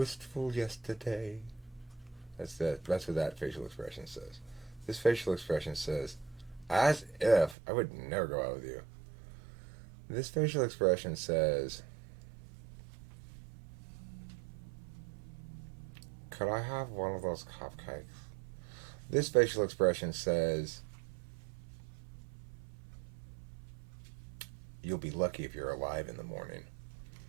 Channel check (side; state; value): left; drops out; at 7.6 s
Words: yesterday. That's what that facial expression says. This facial expression says, as if I would never go out with you. This facial expression says, could I have one of those cupcakes? This facial expression says, you'll be lucky if you're alive in the morning.